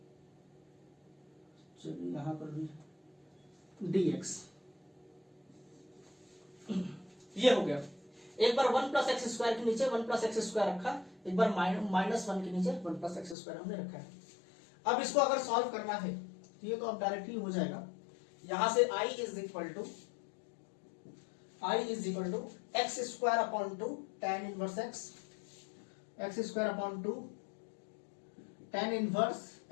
चलिए यहां पर भी dx, ये हो गया। एक बार 1 प्लस एक्स स्क्वायर के नीचे 1 प्लस एक्स स्क्वायर रखा, एक बार -1 के नीचे 1 प्लस एक्स स्क्वायर हमने रखा है। अब इसको अगर सॉल्व करना है तो ये तो अब डायरेक्टली हो जाएगा, यहां से I is equal to X square upon 2 tan inverse X square upon 2 tan inverse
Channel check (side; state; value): right; drops out; at 13.4 s